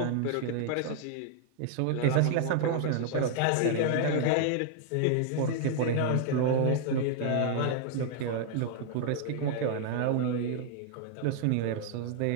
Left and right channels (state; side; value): different; both; correlation 0.00